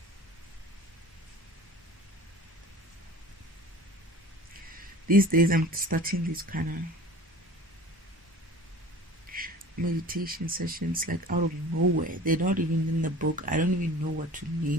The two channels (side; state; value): both; normal; correlation 0.42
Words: These days I'm starting these kind of meditation sessions like out of nowhere. They're not even in the book. I don't even know what to